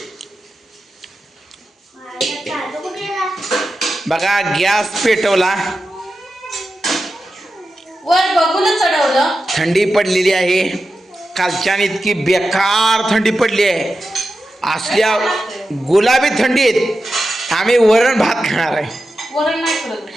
बघा गॅस पेटवला. वर बघून चढवलं. थंडी पडलेली आहे. कालच्यान इतकी बेकार थंडी पडली आहे. असल्या गुलाबी थंडीत आम्ही वरण भात खाणार आहे. वरण नाही करत.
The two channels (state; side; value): normal; both; correlation 0.91